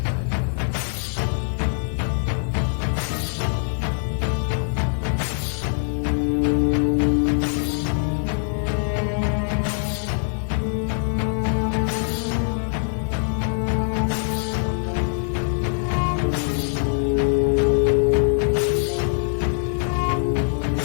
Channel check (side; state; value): right; silent; digital silence